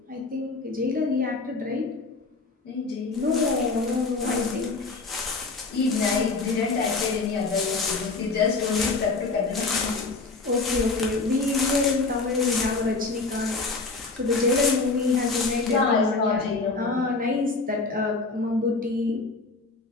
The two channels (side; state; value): right; quieter; 3.8 dB